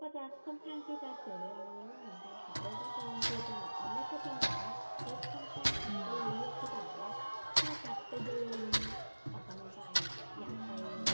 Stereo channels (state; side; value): inverted; both; correlation -1.00